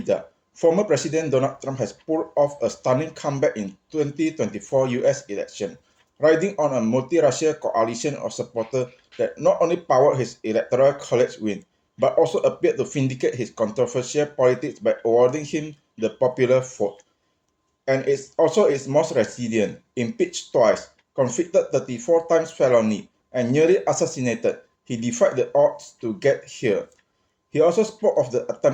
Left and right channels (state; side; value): identical; both; correlation 1.00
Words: Former President Donald Trump has pulled off a stunning comeback in 2024 US election, riding on a multi-racial coalition of supporters that not only powered his electoral college win, but also appeared to vindicate his controversial politics by awarding him the popular vote. And it's also its most resilient, impeached twice, convicted 34 times felony, and nearly assassinated. He defied the odds to get here. He also spoke of the